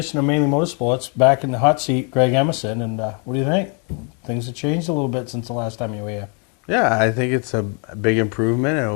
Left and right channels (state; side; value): quieter; right; 37.8 dB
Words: of Mainely Motorsports. Back in the hot seat, Greg Emerson. And what do you think? Things have changed a little bit since the last time you were here. Yeah, I think it's a big improvement. It